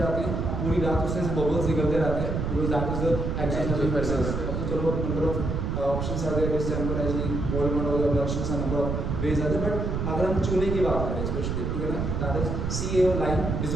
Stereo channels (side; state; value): right; noise; rumble, 1 dB below the sound